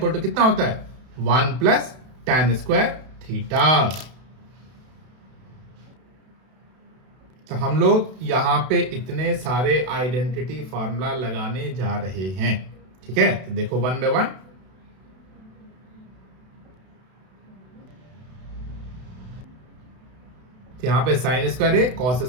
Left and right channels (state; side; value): late; left; 32 ms